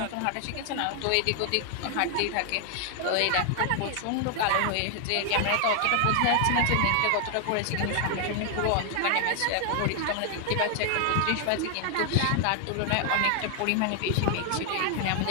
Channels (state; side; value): different; both; correlation 0.00